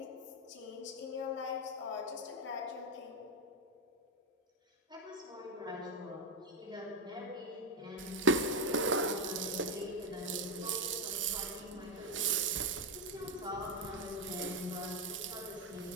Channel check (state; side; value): normal; both; correlation 0.08